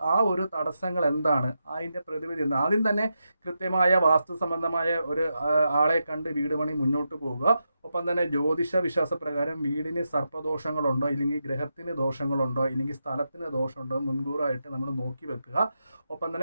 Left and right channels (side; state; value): both; inverted; correlation -0.87